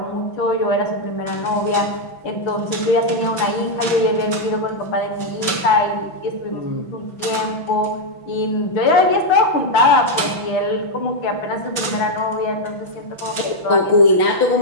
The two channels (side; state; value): right; late; 6.0 ms